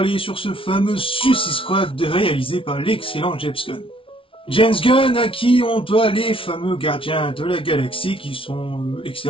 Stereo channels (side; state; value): right; late; 0.25 ms